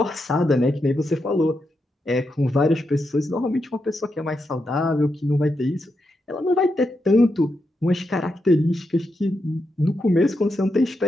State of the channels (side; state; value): both; normal; correlation 0.85